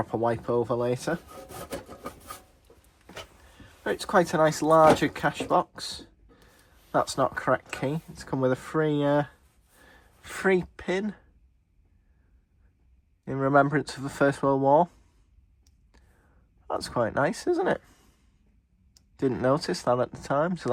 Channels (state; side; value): identical; both; correlation 1.00